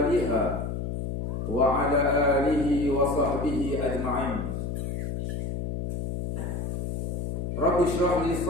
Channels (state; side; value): noise; left; hum, 3 dB below the sound